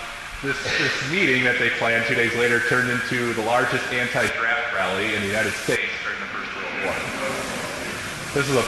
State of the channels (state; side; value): identical; both; correlation 1.00